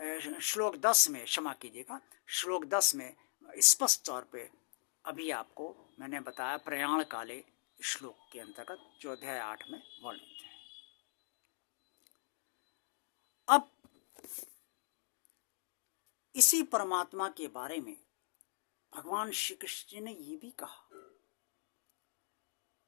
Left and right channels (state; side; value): silent; right; digital silence